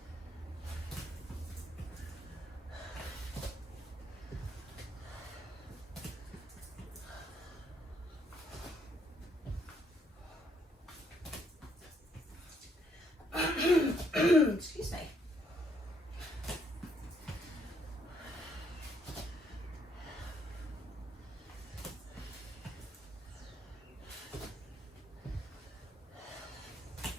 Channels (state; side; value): normal; both; correlation 0.71